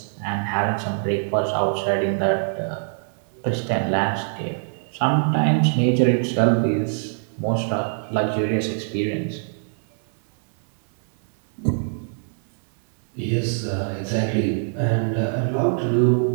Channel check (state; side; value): silent; left; 61 dB below the other